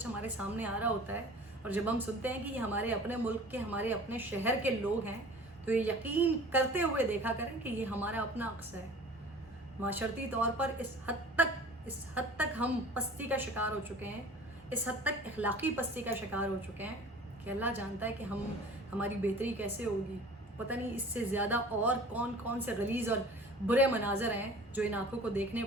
ہمارے سامنے آ رہا ہوتا ہے, اور جب ہم سنتے ہیں کہ یہ ہمارے اپنے ملک کے, ہمارے اپنے شہر کے لوگ ہیں, تو یہ یقین کرتے ہوئے دیکھا کریں کہ یہ ہمارا اپنا عکس ہے. معاشرتی طور پر اس حد تک ہم پستی کا شکار ہو چکے ہیں, اس حد تک اخلاقی پستی کا شکار ہو چکے ہیں کہ اللہ جانتا ہے کہ ہماری بہتری کیسے ہوگی. پتہ نہیں اس سے زیادہ اور کون سے غلیظ اور برے مناظر ہیں جو ان آنکھوں کو دیکھنے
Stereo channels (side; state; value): both; normal; correlation 0.44